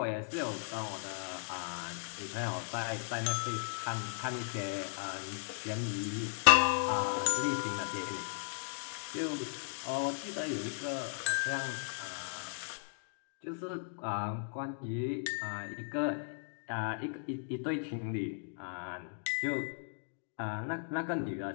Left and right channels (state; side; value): silent; right; digital silence